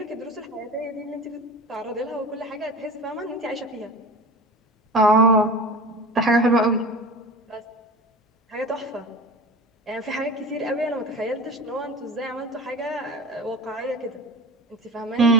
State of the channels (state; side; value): normal; both; correlation 0.35